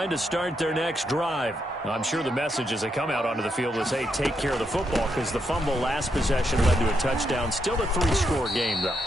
to start their next drive. I'm sure the message as they come out onto the field is, hey, take care of the football, because the fumble last possession led to a touchdown. Still a 3-score game, though.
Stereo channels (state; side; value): normal; both; correlation 0.80